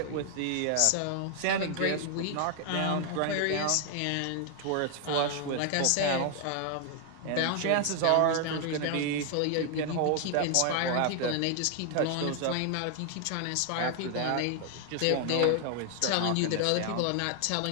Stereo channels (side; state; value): both; different; correlation 0.00